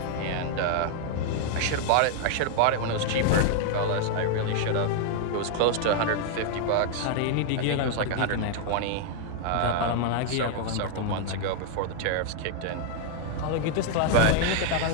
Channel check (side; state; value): both; different; correlation 0.00